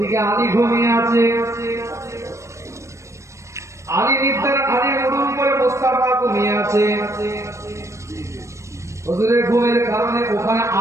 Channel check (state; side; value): late; left; 0.14 ms